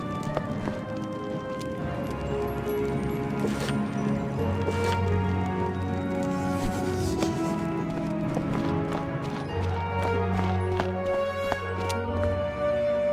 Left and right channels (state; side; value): identical; both; correlation 1.00